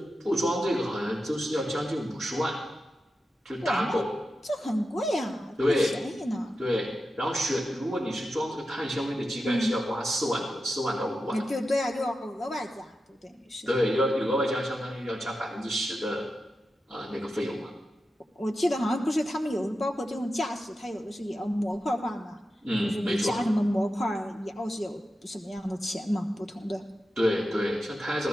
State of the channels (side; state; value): both; normal; correlation 0.90